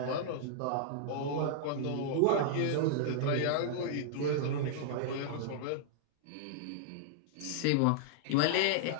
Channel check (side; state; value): both; different; correlation -0.01